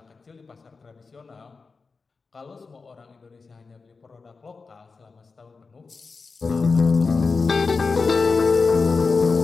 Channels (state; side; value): quieter; right; 4.5 dB